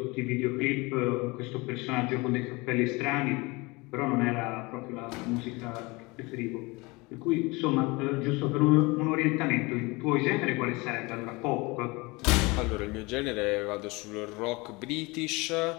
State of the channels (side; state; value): right; quieter; 24.8 dB